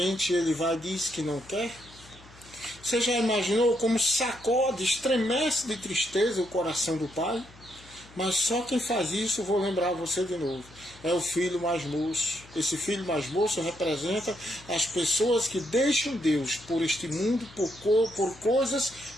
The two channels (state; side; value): noise; left; hum, 23 dB below the sound